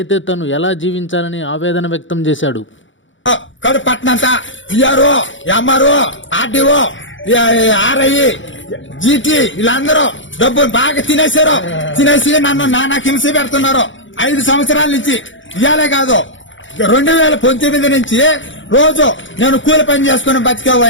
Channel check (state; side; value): late; right; 0.56 ms